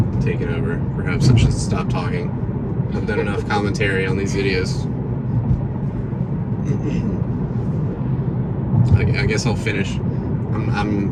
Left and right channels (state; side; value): identical; both; correlation 1.00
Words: taken over. Perhaps I should stop talking. I've done enough commentary on these videos. I guess I'll finish.